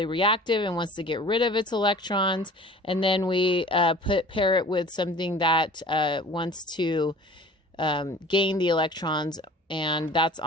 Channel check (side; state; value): both; normal; correlation 0.45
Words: reactive and wants to get rid of its electrons, and then we pair it with something that wants to gain the electrons and that's